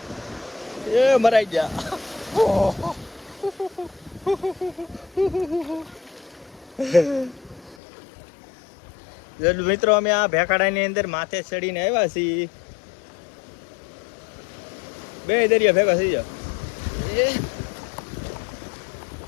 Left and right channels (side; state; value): right; drops out; at 7.8 s